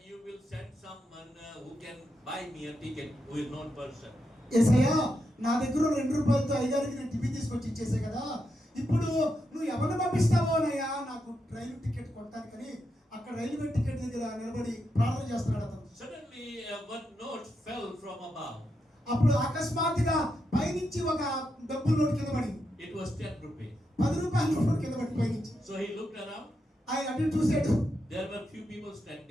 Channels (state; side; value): normal; both; correlation 0.84